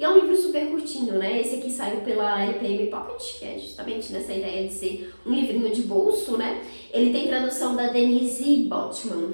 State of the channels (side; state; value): both; inverted; correlation -1.00